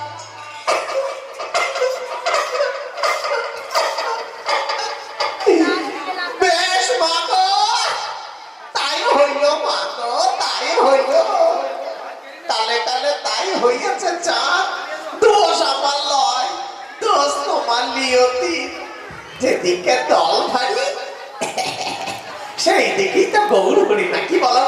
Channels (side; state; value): both; identical; correlation 1.00